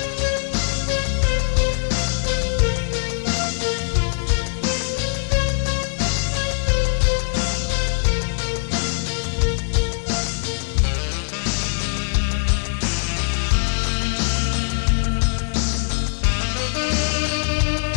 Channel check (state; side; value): silent; right; digital silence